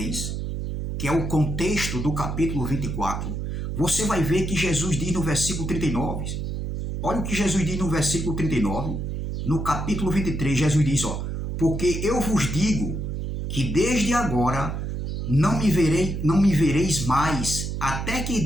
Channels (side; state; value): right; noise; hum, 4 dB below the sound